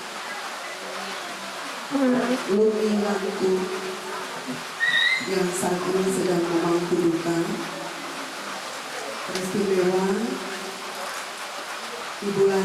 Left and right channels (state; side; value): identical; both; correlation 1.00